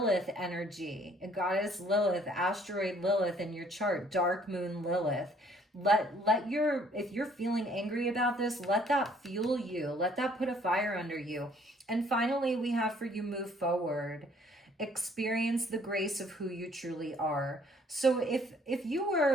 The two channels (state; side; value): normal; both; correlation 0.61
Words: energy, goddess Lilith, asteroid Lilith in your chart, dark moon Lilith. If you're feeling angry about this, let that fuel you, let that put a fire under you. And finally, we have for you, move forward. Experience the grace of who you truly are. So if you